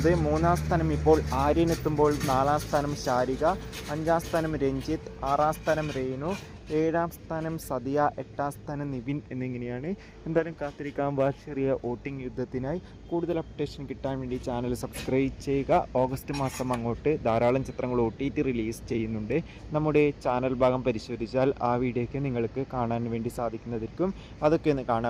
3-ാം സ്ഥാനം ഇപ്പോൾ ആര്യനെത്തുമ്പോൾ 4-ാം സ്ഥാനം ശാരിക, 5-ാം സ്ഥാനം രഞ്ജിത്ത്, 6-ാം സ്ഥാനം രേണു, 7-ാം സ്ഥാനം സദിയ, 8-ാം സ്ഥാനം നിവിൻ എന്നിങ്ങനെയാണ്. എന്തായാലും കാത്തിരിക്കാം ചെറിയ വോട്ടിംഗ് യുദ്ധത്തിനായി. കൂടുതൽ അപ്ഡേഷൻ കിട്ടാൻ വേണ്ടി ചാനൽ സബ്സ്ക്രൈബ് ചെയ്യുക. ഓഗസ്റ്റ് മാസം അങ്ങോട്ട് ധാരാളം ചിത്രങ്ങൾ OTT റിലീസ് ചെയ്യുന്നുണ്ട്. നമ്മുടെ ചാനൽ ഭാഗം പരിശോധിച്ചാൽ ആ വീഡിയോയ്ക്ക് നിങ്ങൾക്ക് കാണാൻ വേണ്ടി സാധിക്കുന്നതായിരിക്കും. അതൊക്കെ ഒന്ന്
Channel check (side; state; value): both; identical; correlation 1.00